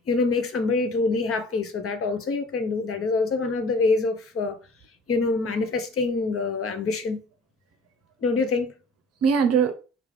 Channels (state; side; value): normal; both; correlation 0.47